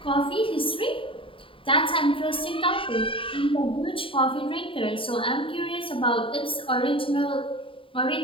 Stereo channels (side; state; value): right; late; 0.25 ms